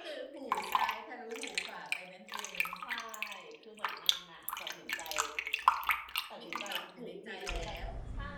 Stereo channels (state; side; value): identical; both; correlation 1.00